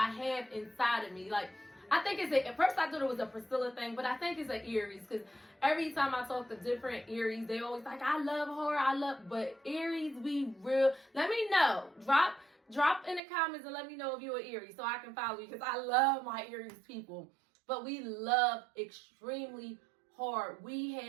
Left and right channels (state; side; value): drops out; left; at 13.2 s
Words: have inside of me. Like, I think at first I thought it was a Priscilla thing, but I think it's an Aries, because every time I talk to different Aries, they always like, I love her, but Aries, we real. Let me know. Drop in the comments and let me know if you're an Aries so I can follow you, because I love my Aries people. But we love extremely hard. We